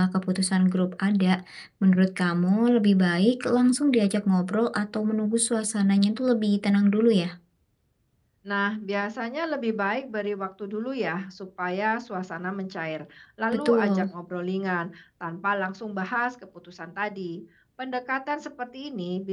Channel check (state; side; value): identical; both; correlation 1.00